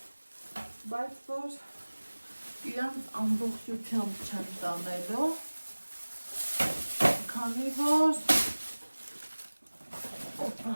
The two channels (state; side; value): inverted; both; correlation -1.00